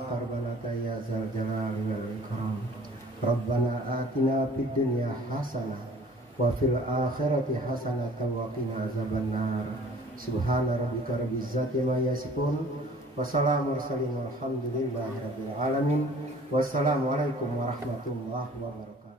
ربنا يا ذا الجلال والإكرام. ربنا آتنا في الدنيا حسنة وفي الآخرة حسنة وقنا عذاب النار. سبحان ربك رب العزة ما يصفون وسلام المرسلين والحمد لله رب العالمين. والسلام عليكم ورحمة الله وبركاته.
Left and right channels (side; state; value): both; normal; correlation 0.51